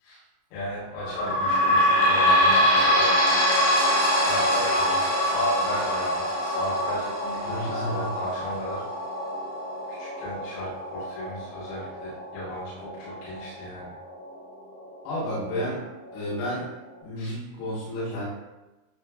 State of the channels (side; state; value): right; late; 33 ms